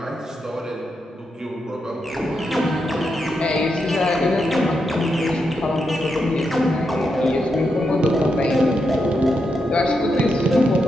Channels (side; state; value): both; normal; correlation 0.84